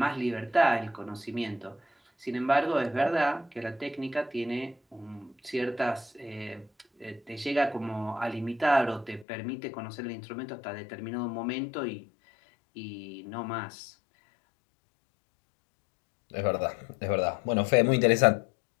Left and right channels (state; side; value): drops out; right; at 9.2 s